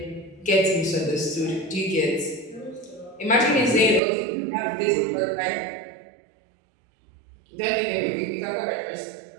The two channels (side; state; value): left; drops out; at 4.0 s